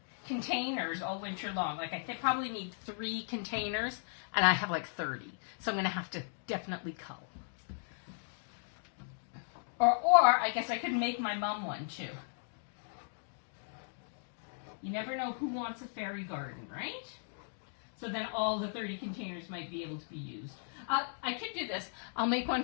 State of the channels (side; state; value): right; silent; digital silence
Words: containers all winter long. Like I probably need 3 containers and I have like 30. So I'm going to have to definitely cull. Or I guess I could make my mom one too. You never know who wants a fairy garden, right? So then all the 30 containers might be able to be used. I could do this. I'll make one